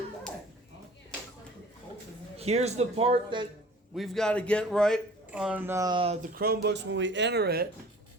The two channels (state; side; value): normal; both; correlation 0.47